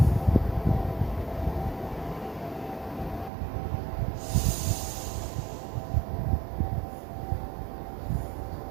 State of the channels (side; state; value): left; drops out; at 3.3 s